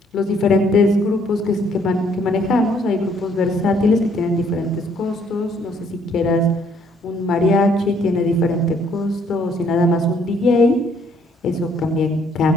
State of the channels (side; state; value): both; normal; correlation 0.65